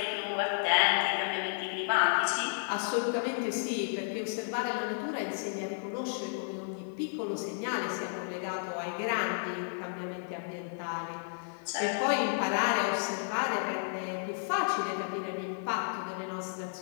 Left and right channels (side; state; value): right; silent; digital silence